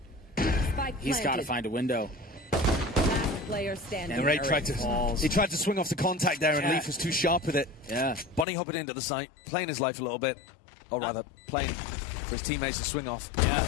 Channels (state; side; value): drops out; right; at 8.5 s